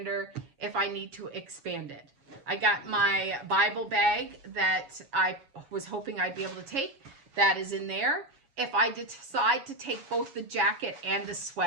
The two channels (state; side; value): late; left; 7.4 ms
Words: if I need to expand it. I got my Bible bag that I was hoping I'd be able to take. That is in there. If I decide to take both the jacket and the